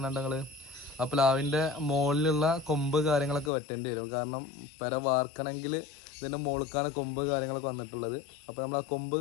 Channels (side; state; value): right; drops out; at 3.5 s